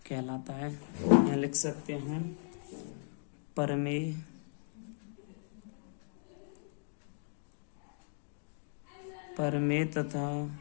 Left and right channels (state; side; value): silent; right; digital silence